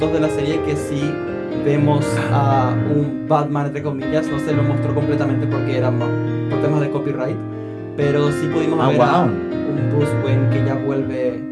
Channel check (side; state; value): both; identical; correlation 1.00